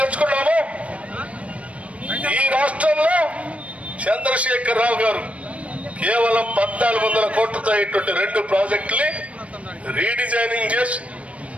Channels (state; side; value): late; left; 0.064 ms